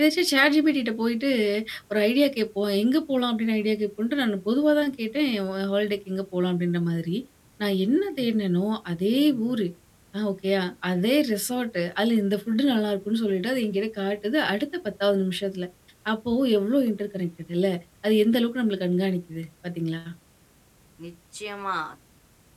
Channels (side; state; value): both; identical; correlation 1.00